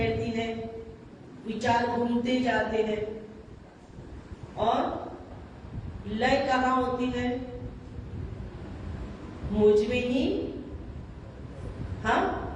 है। विचार घूमते जाते हैं। और लय कहां होती है? मुझमें ही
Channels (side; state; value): both; identical; correlation 1.00